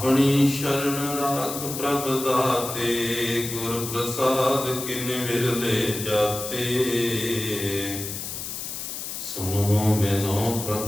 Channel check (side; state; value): left; noise; hiss, 7 dB below the sound